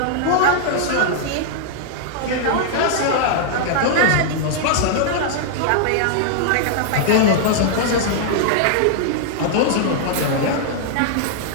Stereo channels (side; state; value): both; different; correlation -0.01